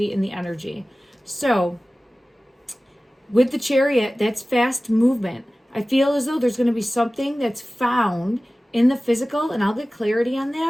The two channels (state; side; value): normal; both; correlation 0.97